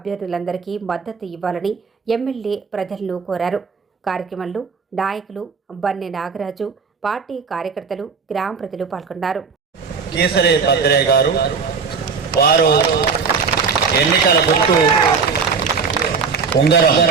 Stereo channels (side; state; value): left; quieter; 5.5 dB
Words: మద్దతు ఇవ్వాలని ఎమ్మెల్యే ప్రజలను కోరారు. కార్యక్రమంలో నాయకులు బన్నె నాగరాజు, పార్టీ కార్యకర్తలు, గ్రామ ప్రజలు పాల్గొన్నారు. కీసర భద్రయ్య గారు వారు ఎన్నికల గుర్తు